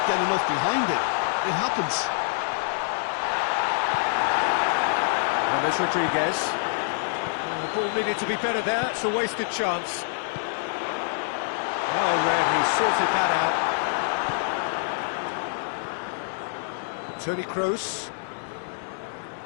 get enough behind it. It happens. James Rodriguez. The ball needed to be better there. It's a wasted chance. Well read, he sorted that out. Toni Kroos.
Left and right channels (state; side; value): silent; right; digital silence